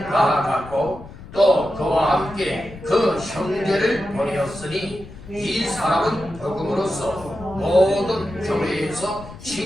또 그와 함께 그 형제를 보내었으니 이 사람은 복음으로써 모든 교회에서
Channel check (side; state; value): left; noise; rumble, 16 dB below the sound